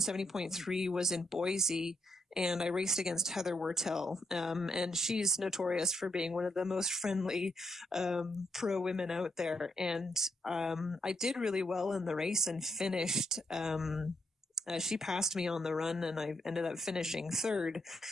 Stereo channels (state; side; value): normal; both; correlation 0.78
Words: was in Boise, and I raced against Heather Wurtell. And she's notorious for being one of the most friendly pro women out there. And I did really well in the race and finished she passed me on the run, and I ended up finishing third,